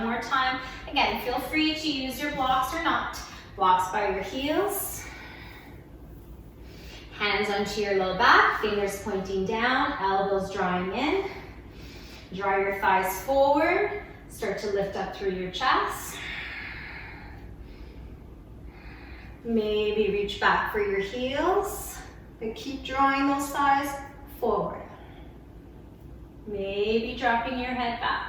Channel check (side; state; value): both; identical; correlation 1.00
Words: more time. Again, feel free to use your blocks or not. Blocks by your heels. Hands onto your low back, fingers pointing down, elbows drawing in. Draw your thighs forward. Start to lift up through your chest. Maybe reach back for your heels. But keep drawing those thighs forward. Maybe dropping your head